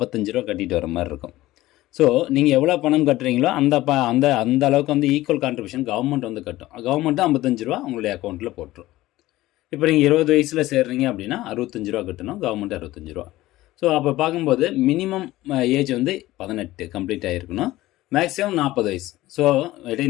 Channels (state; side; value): quieter; right; 16.9 dB